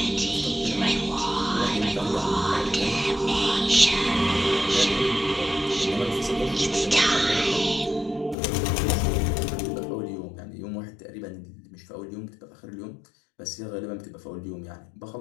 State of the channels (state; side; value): drops out; right; at 8.3 s